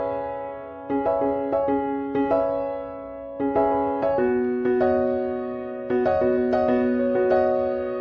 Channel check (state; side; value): identical; both; correlation 1.00